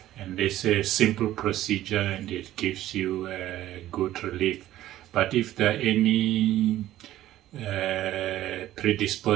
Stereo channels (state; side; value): quieter; left; 13.9 dB